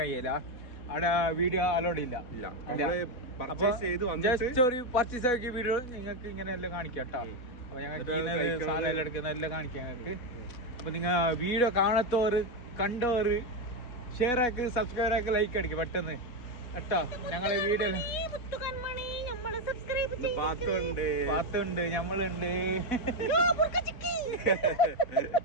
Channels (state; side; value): late; right; 3.6 ms